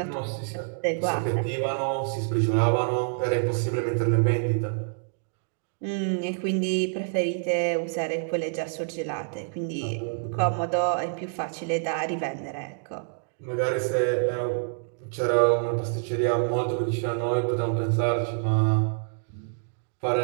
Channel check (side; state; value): left; silent; digital silence